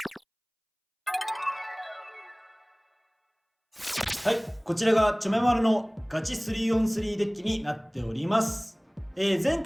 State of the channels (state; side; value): identical; both; correlation 1.00